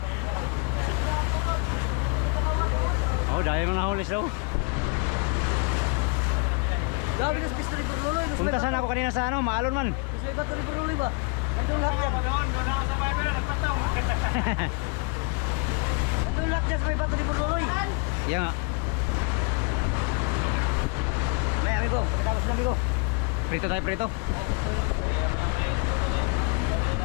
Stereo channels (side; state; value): right; quieter; 30.0 dB